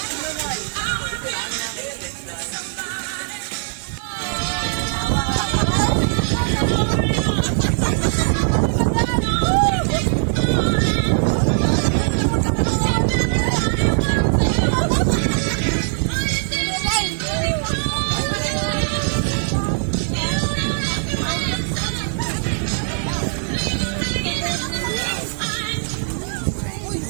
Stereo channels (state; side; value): silent; left; 65 dB below the other